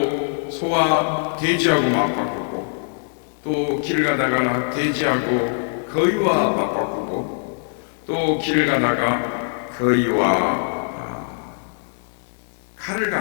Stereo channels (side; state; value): right; silent; digital silence